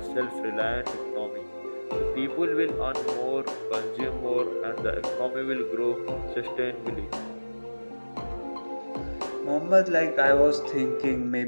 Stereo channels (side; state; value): both; inverted; correlation -1.00